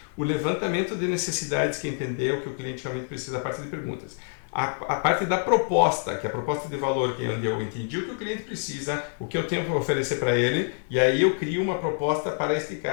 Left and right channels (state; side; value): silent; right; 61 dB below the other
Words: o levantamento de necessidades, que é entender o que o cliente realmente precisa, a parte de perguntas, a parte da proposta, que é a proposta de valor, que é onde eu entendi o que o cliente precisa, o que eu tenho para oferecer para ele, e aí eu crio uma proposta para este